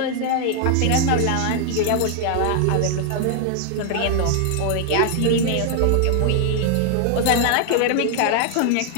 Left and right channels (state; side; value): different; both; correlation 0.00